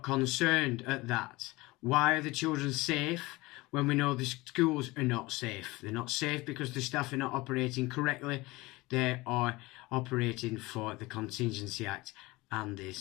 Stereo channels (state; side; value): quieter; right; 21.6 dB